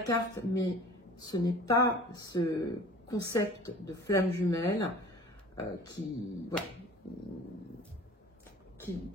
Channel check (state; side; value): normal; both; correlation 0.45